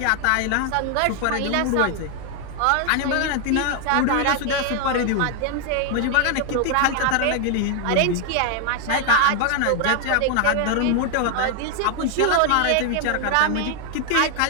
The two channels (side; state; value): both; different; correlation 0.00